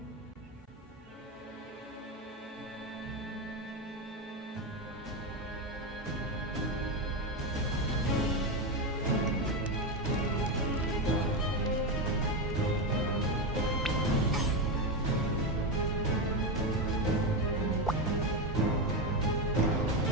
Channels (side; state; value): both; normal; correlation 0.11